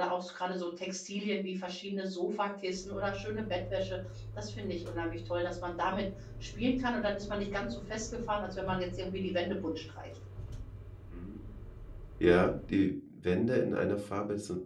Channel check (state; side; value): identical; both; correlation 1.00